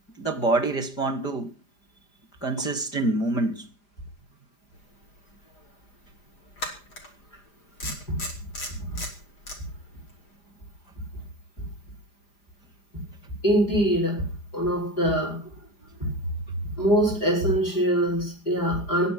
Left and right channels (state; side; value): late; right; 5.0 ms